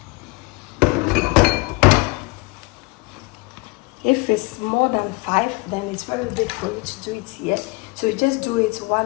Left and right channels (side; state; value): right; quieter; 25.6 dB